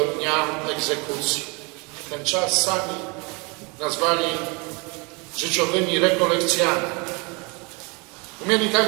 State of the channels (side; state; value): left; quieter; 30.1 dB